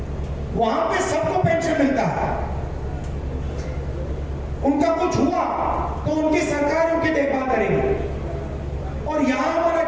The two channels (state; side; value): identical; both; correlation 1.00